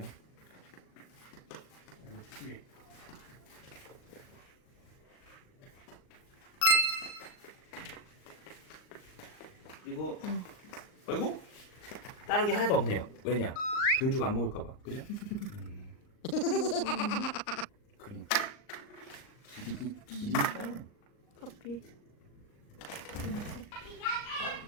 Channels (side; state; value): right; late; 39 ms